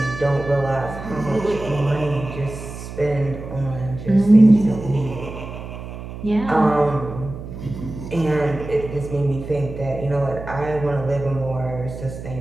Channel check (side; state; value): right; noise; hum, 11 dB below the sound